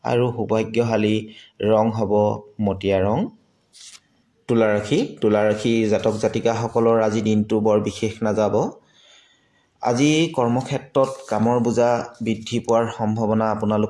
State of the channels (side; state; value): both; identical; correlation 1.00